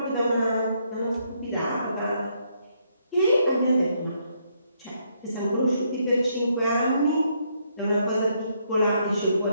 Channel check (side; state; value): both; inverted; correlation -0.74